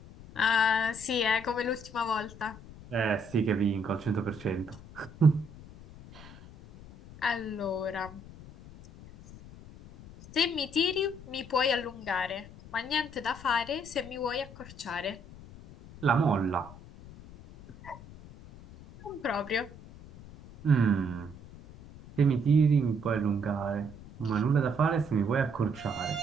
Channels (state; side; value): noise; left; rumble, 18 dB below the sound